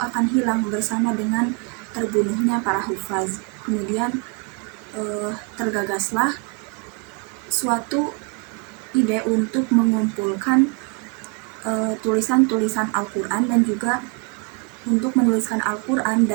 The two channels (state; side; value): quieter; left; 31.3 dB